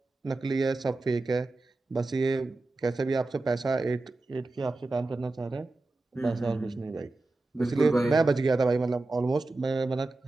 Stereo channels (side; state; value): left; quieter; 3.1 dB